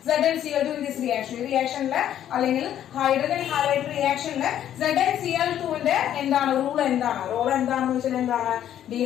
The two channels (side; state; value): right; quieter; 10.9 dB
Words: ZnCl2 in this reaction. ഈ റിയാക്ഷനില് അല്ലെങ്കിൽ ഹൈഡ്രജൻ ഹാലൈഡ് റിയാക്ഷനില് ZnCl2ന്റെ എന്താണ് റൂൾ? എന്താണ് റോൾ? എന്താണെന്ന് വെച്ചാൽ എന്താണ്?